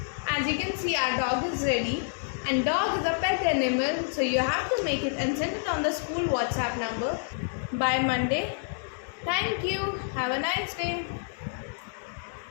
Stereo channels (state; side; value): silent; right; digital silence